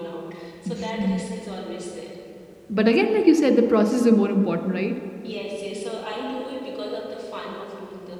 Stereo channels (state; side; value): identical; both; correlation 1.00